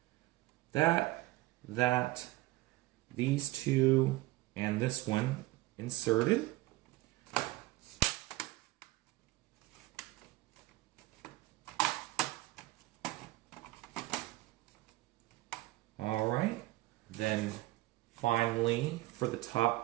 that, these two, and this one inserted. All right, then finally for the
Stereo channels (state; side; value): quieter; left; 18.7 dB